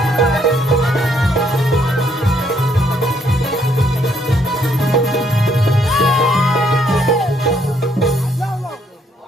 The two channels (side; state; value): both; normal; correlation 0.69